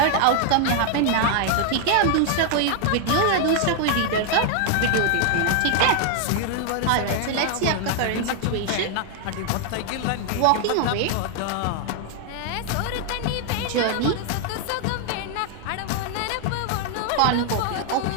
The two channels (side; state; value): both; different; correlation 0.00